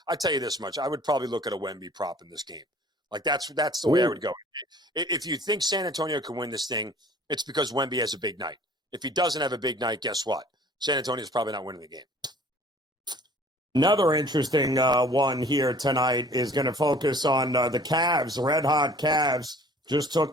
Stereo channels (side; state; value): both; normal; correlation 0.51